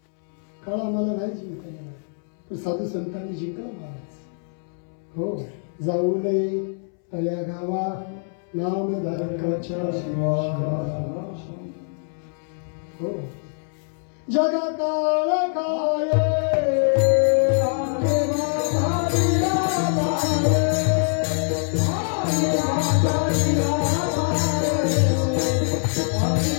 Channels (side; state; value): right; silent; 63 dB below the other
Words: काळ आम्हाला नाही जिंकता येणार पण साधू संतांनी जिंकला महाराज. हो, जाऊ नये तळ्या गावा नामधारकाच्या हो जगा काळ काय